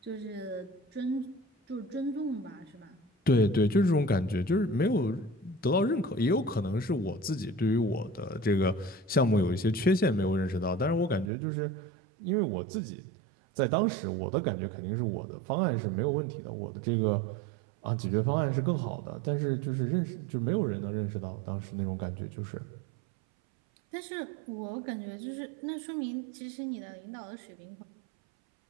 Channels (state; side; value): drops out; left; at 11.3 s